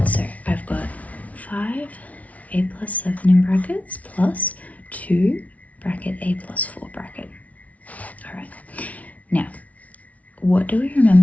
so I've got 5a plus 7 in brackets plus 2 bracket a plus 4 bracket. Alright, now what do we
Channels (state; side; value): late; right; 0.068 ms